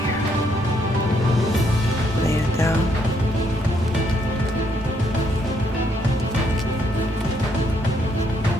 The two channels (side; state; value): both; normal; correlation 0.72